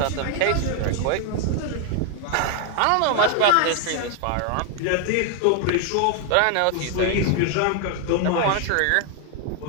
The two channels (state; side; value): different; both; correlation 0.00